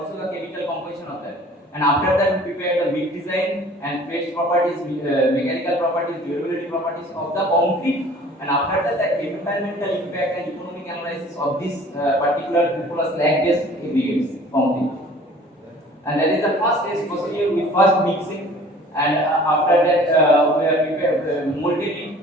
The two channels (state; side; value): normal; both; correlation 0.49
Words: the chemical composition of that. And after that we prepare the big design and phase properties, mechanical properties, durability properties of the concrete, and after that the environmental impact and economic analysis of this particular cupola slag based aggregates concrete. And that is the first stage procedure with first mixing, and after that we are prepared molded it